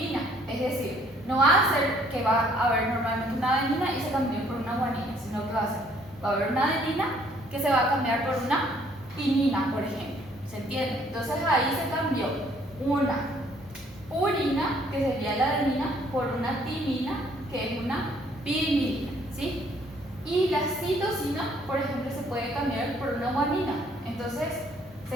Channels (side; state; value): both; normal; correlation 0.63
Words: Es decir, no va a ser que va a haber normalmente una adenina y se cambie por una guanina, sino que va a haber una adenina que se va a cambiar por una timina, por ejemplo. ¿Se entiende? Entonces ahí se cambió una purina, que sería la adenina, por una timina, que es una pirimidina, ¿sí? Y la citosina, por ejemplo, se puede cambiar por una guanina. Entonces